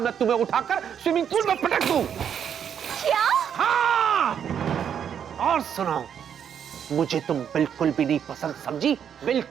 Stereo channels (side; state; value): left; quieter; 8.4 dB